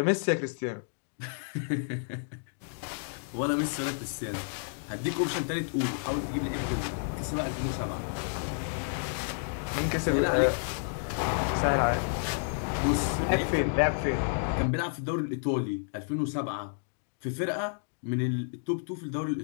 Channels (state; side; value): silent; right; digital silence